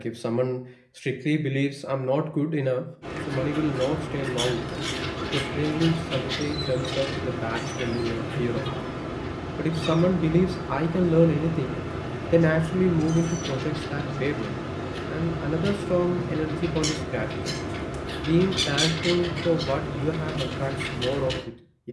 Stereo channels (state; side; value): identical; both; correlation 1.00